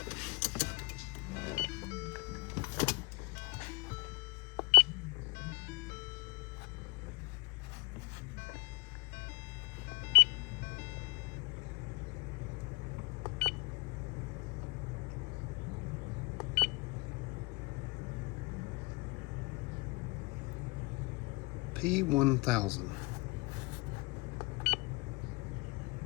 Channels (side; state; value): right; quieter; 25.4 dB